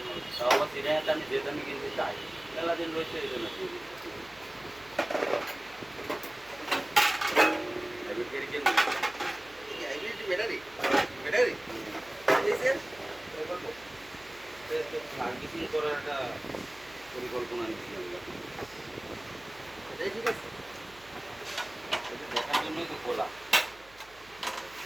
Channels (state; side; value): noise; right; hum, 25 dB below the sound